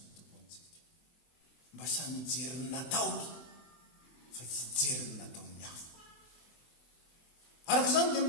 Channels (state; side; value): late; right; 24 ms